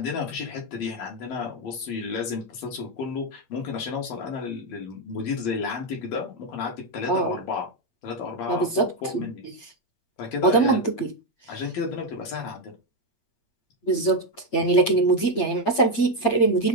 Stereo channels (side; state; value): right; late; 8.6 ms